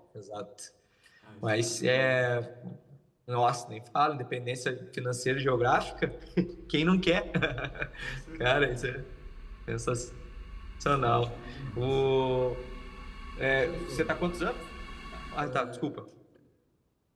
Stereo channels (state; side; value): identical; both; correlation 1.00